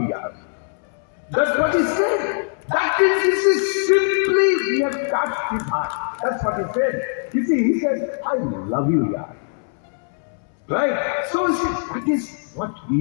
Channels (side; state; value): right; silent; 64 dB below the other